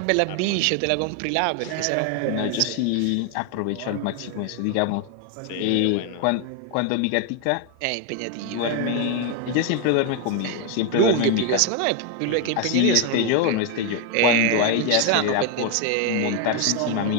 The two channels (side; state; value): both; different; correlation 0.01